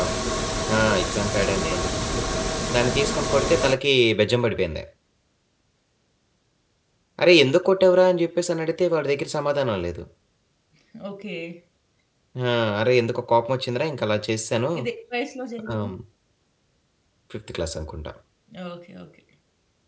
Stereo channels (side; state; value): both; identical; correlation 1.00